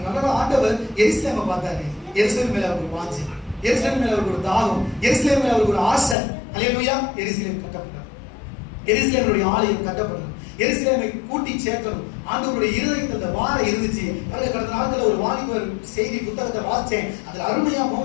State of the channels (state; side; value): drops out; right; at 6.2 s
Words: ஆண்டவர் எருசலேமை பார்த்தாரு. எருசலேம் மேல அவருக்கு வாஞ்சை, எருசலேம் மேல அவருக்கு ஒரு தாகம், எருசலேம் மேல அவருக்கு ஒரு ஆசை. அல்லேலூயா. எருசலேம் கட்டப்பட்டார். எருசலேமுடைய ஆலயம் கட்டப்பட்டது. எருசலேமை கூட்டி சேர்க்கணும். ஆண்டவருடைய இருதயத்தில் அந்த வாரம் இருந்துச்சு. கடந்த நாட்கள் ஒரு வாலிபர் செய்தி புத்தகத்தை வாசிச்சேன். அதுல அருமையா